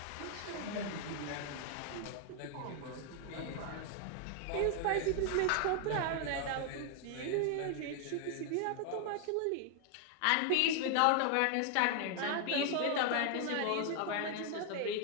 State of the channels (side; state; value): both; different; correlation 0.00